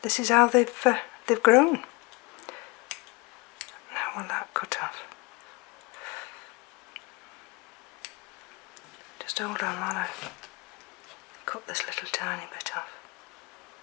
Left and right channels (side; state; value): right; quieter; 25.9 dB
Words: this is how they've grown. Now will that cut off? Just hold on while I cut this little tiny bit off.